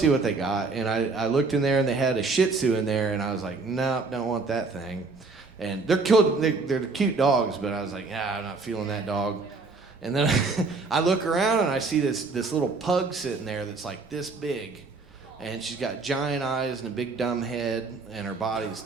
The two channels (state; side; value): quieter; left; 4.0 dB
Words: what they got. And I looked in there and they had a Shih Tzu in there, and I was like, nope, don't want that thing. And they're cute dogs, but I was like, I'm not feeling that dog. And then I look around and I see this little pug sitting there that's like this big. And she's got giant eyes and a big dumb head, and her body's